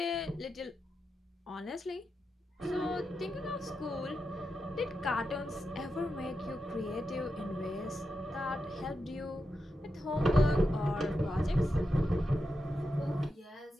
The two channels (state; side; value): normal; both; correlation 0.88